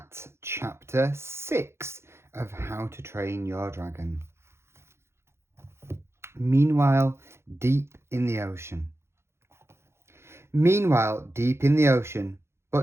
chapter 6 of How to Train Your Dragon. Meanwhile, deep in the ocean. Meanwhile, deep in the ocean,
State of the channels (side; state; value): left; late; 0.13 ms